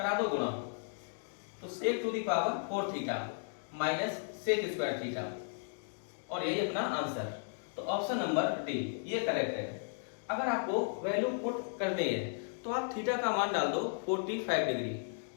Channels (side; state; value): right; silent; digital silence